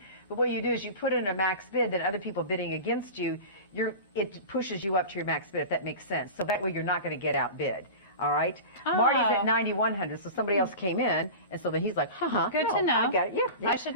But what you do is you put in a max bid, then other people bidding against you, it pushes you up to your max bid, if that makes sense. So that way you're not going to get outbid. All right? Oh. Marty's at 9,100, so somebody else came in, and so then he's like, Good no, to know. I got it. Yeah. I should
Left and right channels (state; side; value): inverted; both; correlation -0.30